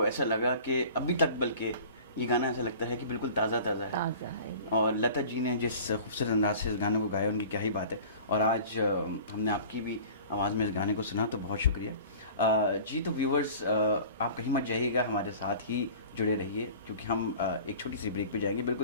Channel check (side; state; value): both; inverted; correlation -0.43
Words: ऐसा लगा कि अभी तक, बल्कि ये गाना ऐसा लगता है कि बिल्कुल ताज़ा ताज़ा है। ताज़ा है। और लता जी ने जिस खूबसूरत अंदाज से इस गाने को गाया, उनकी क्या ही बात है। और आज हमने आपकी भी आवाज़ में इस गाने को सुना, तो बहुत शुक्रिया जी। तो व्यूवर्स, आप कहीं मत जाइएगा, हमारे साथ ही जुड़े रहिए, क्योंकि हम एक छोटी सी ब्रेक पे जाएंगे,